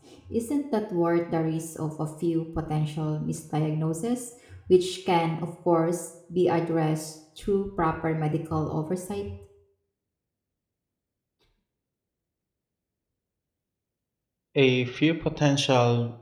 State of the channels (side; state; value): both; identical; correlation 1.00